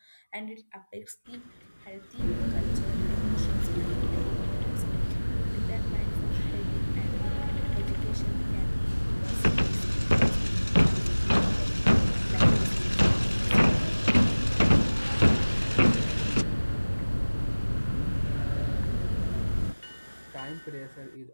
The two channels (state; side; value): inverted; both; correlation -1.00